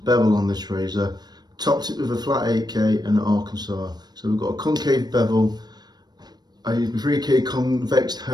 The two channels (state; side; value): late; left; 0.20 ms